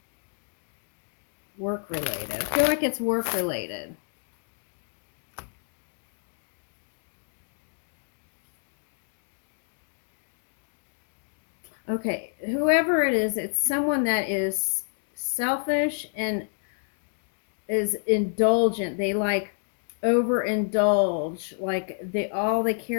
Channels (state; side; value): silent; right; 59 dB below the other